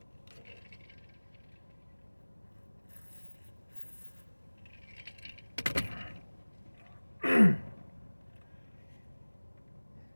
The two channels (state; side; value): inverted; both; correlation -1.00